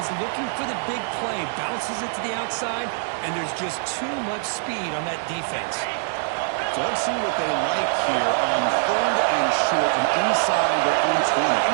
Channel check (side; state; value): left; silent; 63 dB below the other